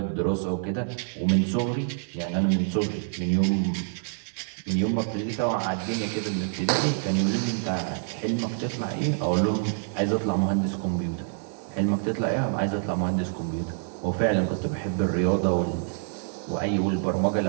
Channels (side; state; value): left; silent; digital silence